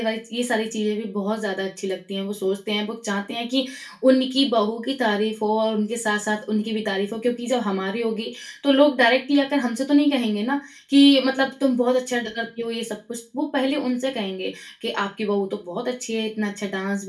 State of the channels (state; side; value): identical; both; correlation 1.00